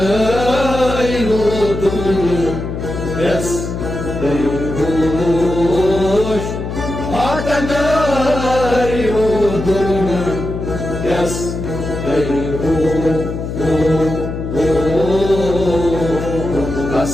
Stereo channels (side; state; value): left; noise; hum, 6 dB below the sound